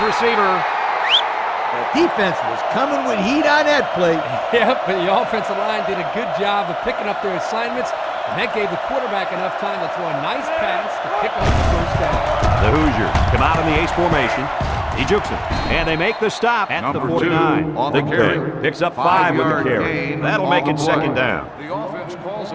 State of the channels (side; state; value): both; identical; correlation 1.00